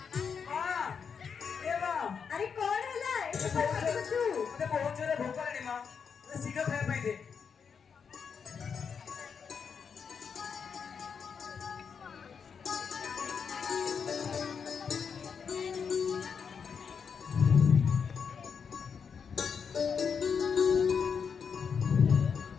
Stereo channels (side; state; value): right; quieter; 6.4 dB